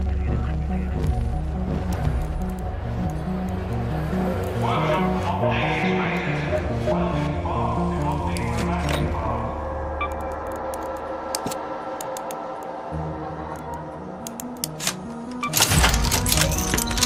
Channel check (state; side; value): identical; both; correlation 1.00